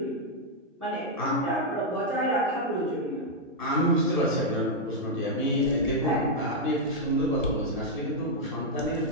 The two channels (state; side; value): normal; both; correlation -0.02